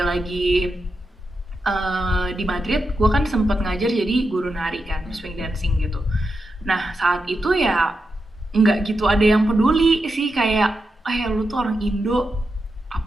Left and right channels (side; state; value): both; normal; correlation 0.87